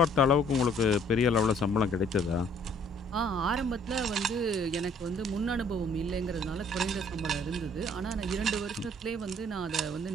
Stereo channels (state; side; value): normal; both; correlation 0.60